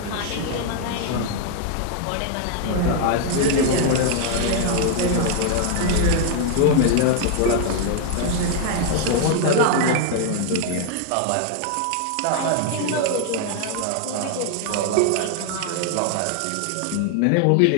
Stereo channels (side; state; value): both; different; correlation 0.00